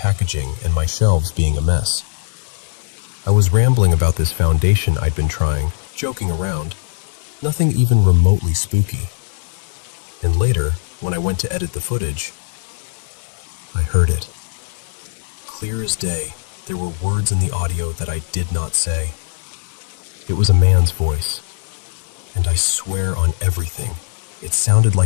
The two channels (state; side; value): silent; right; digital silence